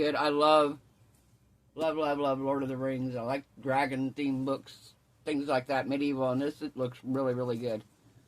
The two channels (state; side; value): identical; both; correlation 1.00